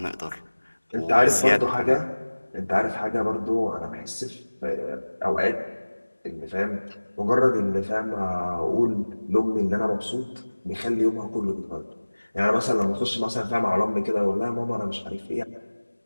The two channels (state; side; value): inverted; both; correlation -1.00